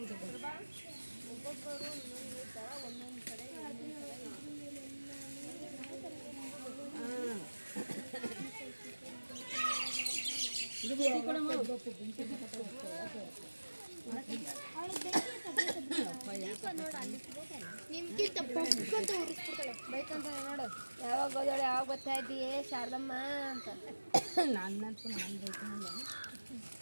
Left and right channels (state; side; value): inverted; both; correlation -1.00